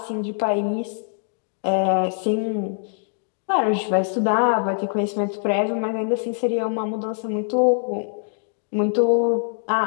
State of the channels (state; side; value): silent; right; digital silence